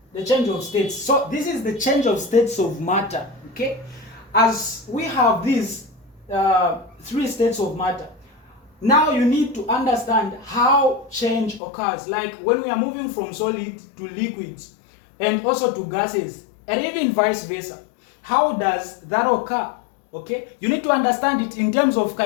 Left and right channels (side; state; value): right; drops out; at 11.6 s